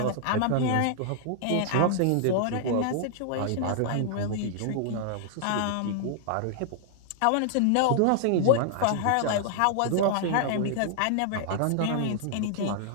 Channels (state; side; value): different; both; correlation -0.01